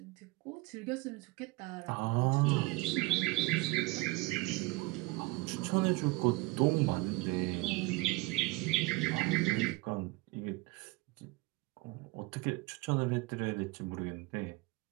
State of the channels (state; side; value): quieter; left; 23.3 dB